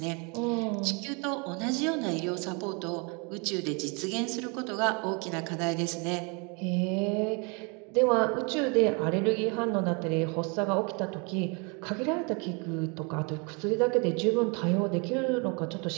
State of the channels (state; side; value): quieter; left; 32.4 dB